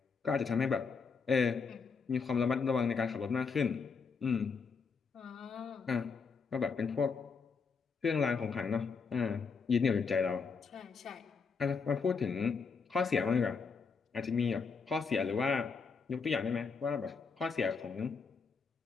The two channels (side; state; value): right; quieter; 5.3 dB